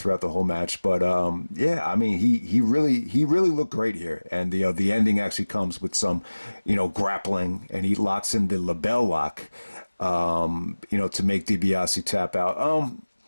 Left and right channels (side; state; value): both; inverted; correlation -1.00